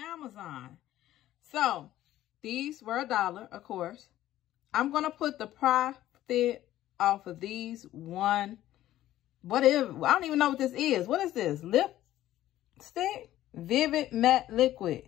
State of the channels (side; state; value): right; quieter; 13.8 dB